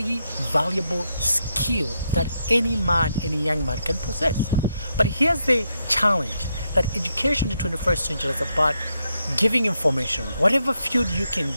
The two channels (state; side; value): inverted; both; correlation -0.81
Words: valuable skill that any man, any young man can possess. But here's the challenge, that education in the 21st century is about giving information. Whatever field you can